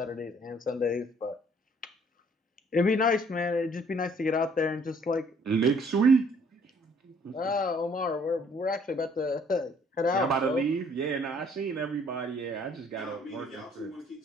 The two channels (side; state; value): both; normal; correlation 0.61